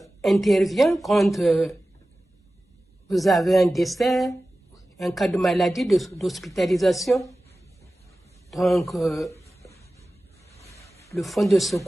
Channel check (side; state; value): both; normal; correlation 0.96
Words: intervient quand vous avez un décès, un cas de maladie, d'hospitalisation. Donc, le fonds de